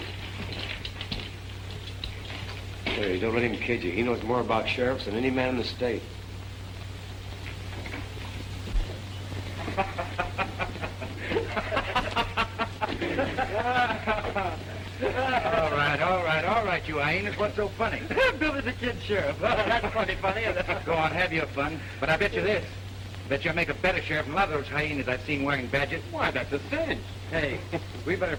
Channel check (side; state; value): both; identical; correlation 1.00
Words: Hey, don't let him kid you. He knows more about sheriffs than any man in the state. All right, you hyenas. What's so funny? Billy's a kid sheriff. That's funny. Go on, have your fun. But I bet you this. Bet you'll make a better sheriff than a lot of those hyenas I've seen wearing badges. Why, that's a cinch. Hey, we better